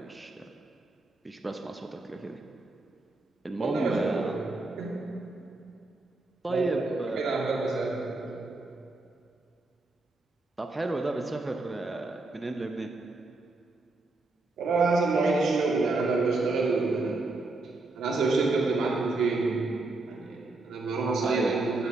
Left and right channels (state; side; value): quieter; left; 3.2 dB